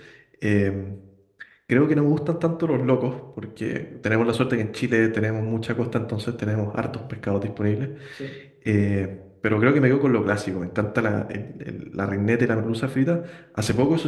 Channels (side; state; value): both; identical; correlation 1.00